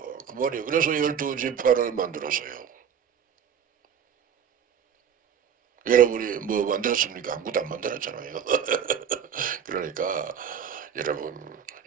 말이에요. 그래서 12지파를 만들었어요. 여러분이 뭐 만들었습니까? 아무것도 안 만들었잖아요. 그러니까 여러분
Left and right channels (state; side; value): quieter; left; 8.1 dB